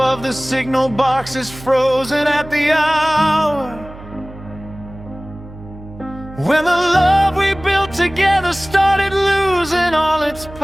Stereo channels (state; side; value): noise; right; hum, 17 dB below the sound